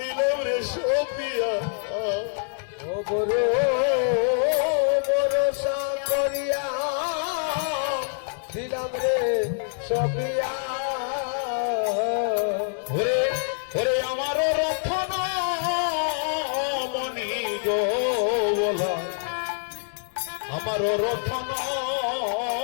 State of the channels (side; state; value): right; silent; digital silence